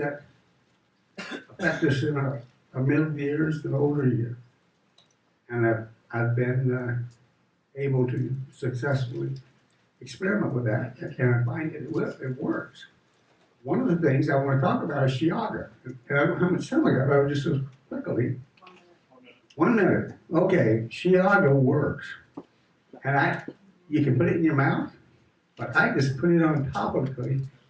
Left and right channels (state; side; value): identical; both; correlation 1.00